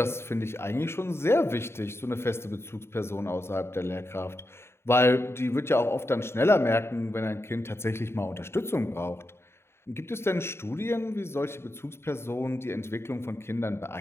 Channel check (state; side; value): late; right; 0.12 ms